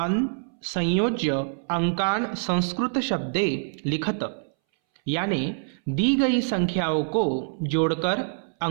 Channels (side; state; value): left; silent; 61 dB below the other